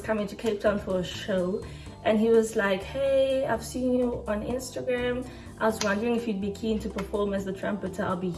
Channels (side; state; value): both; identical; correlation 1.00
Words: coming to Cape Town for a show. And he was like, hey, I've seen you on Instagram. I was wondering if you'd be keen to perform as the trumpeter. I'll be